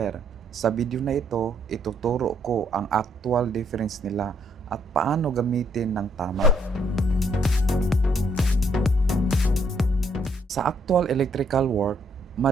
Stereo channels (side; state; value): both; normal; correlation 0.70